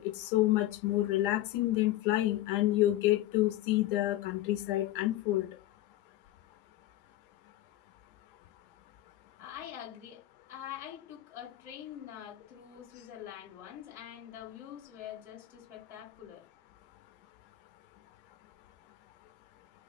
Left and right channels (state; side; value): quieter; right; 15.2 dB